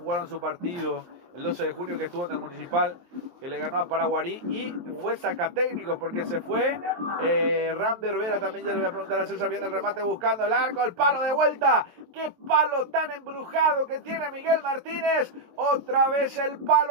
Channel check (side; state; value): left; late; 23 ms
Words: su partido el 12 de junio que estuvo en el Municipal, que le ganó a Paraguarí, y fue sacatécnico porque se fue Rander Vera. También ya le voy a preguntar a César, viene el remate buscando el arco, el palo de vuelta. ¡Qué palo tan embrujado que tiene Miguel Martínez! Otra vez el